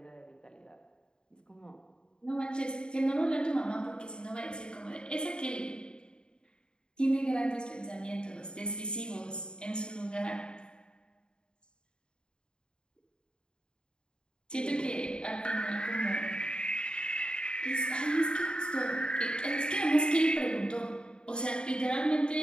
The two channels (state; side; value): late; right; 0.050 ms